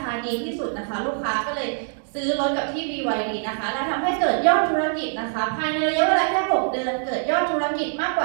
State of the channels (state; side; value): silent; left; digital silence